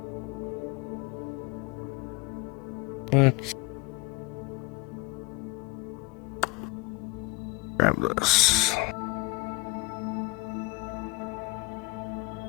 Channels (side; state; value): right; quieter; 23.9 dB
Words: Let's grab this.